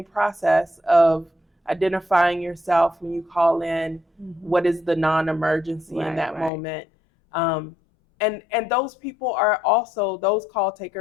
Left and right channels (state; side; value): drops out; right; at 6.5 s